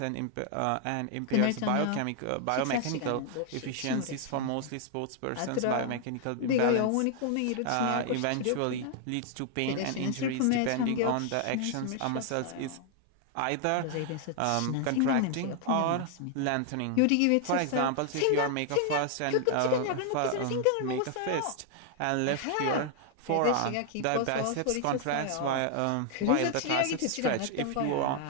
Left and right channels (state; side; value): different; both; correlation 0.00